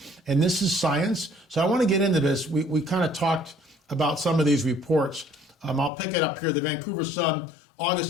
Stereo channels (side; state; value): right; drops out; at 5.9 s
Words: And this is science. So I want to get into this. We kind of talked about some of these reports. I'll pick it up here. The Vancouver Sun,